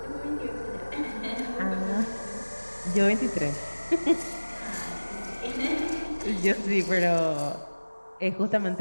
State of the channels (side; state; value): both; inverted; correlation -1.00